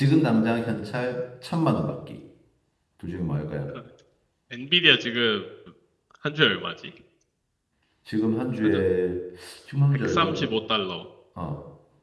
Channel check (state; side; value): identical; both; correlation 1.00